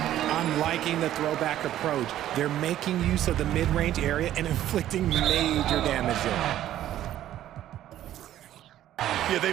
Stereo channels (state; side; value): quieter; left; 12.5 dB